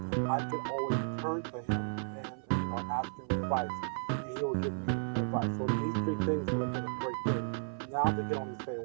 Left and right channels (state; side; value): silent; left; 55 dB below the other